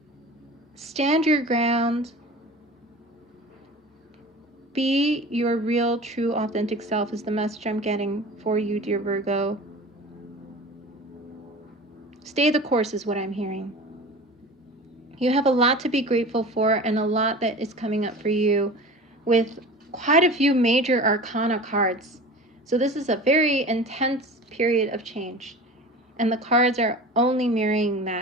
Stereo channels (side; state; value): both; normal; correlation 0.36